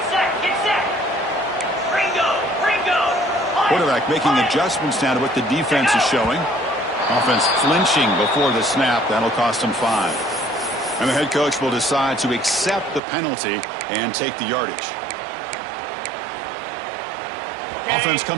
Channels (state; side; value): drops out; left; at 13.0 s